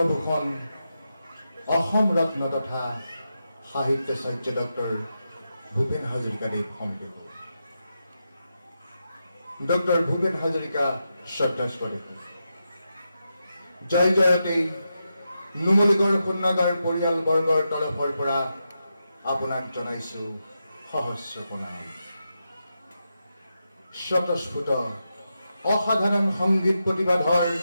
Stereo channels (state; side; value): inverted; both; correlation -0.87